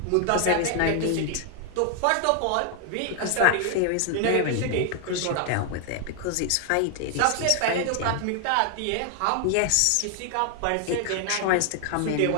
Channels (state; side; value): different; both; correlation 0.00